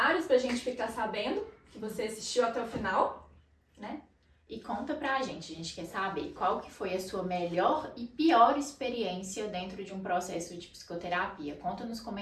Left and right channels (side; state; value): both; identical; correlation 1.00